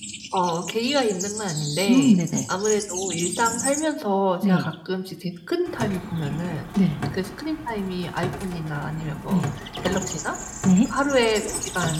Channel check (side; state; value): both; identical; correlation 1.00